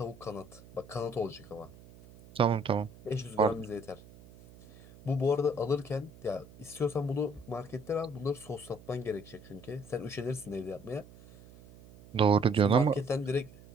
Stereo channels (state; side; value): noise; right; hum, 21 dB below the sound